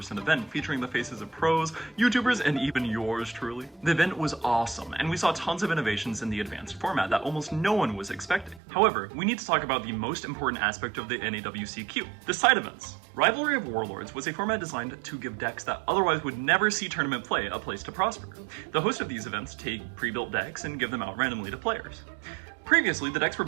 event featuring the faces of pros, YouTubers, and even yours truly. The event was awesome, and we saw tons of innovations in the advanced format that almost no one was expecting. However, we need to talk about the most important aspect of the NAWCQ, the side events. Rivalry of Warlords was a format designed to give decks that otherwise would never see tournament play a place to prosper. The host of these events take pre-built decks and give them out randomly to players. Previously, the decks were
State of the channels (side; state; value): left; drops out; at 8.6 s